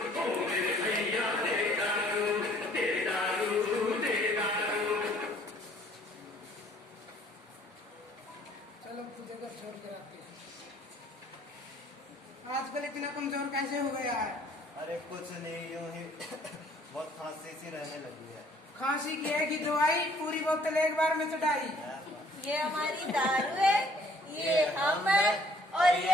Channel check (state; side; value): normal; both; correlation 0.59